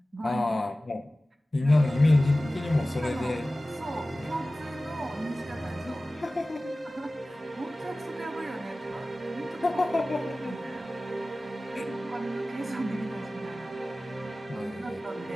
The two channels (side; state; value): both; normal; correlation 0.97